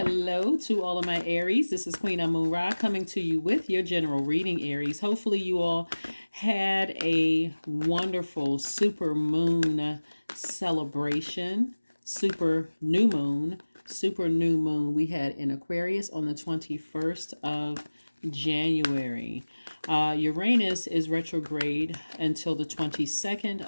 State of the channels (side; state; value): both; inverted; correlation -1.00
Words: to all of my Aries. This is Queen Amun Ra coming to you with your general reading, Aries. Hopefully, you all had a wonderful super moon celebration, super new moon we had in Aquarius on the 21st of January. Uranus is retrograde until the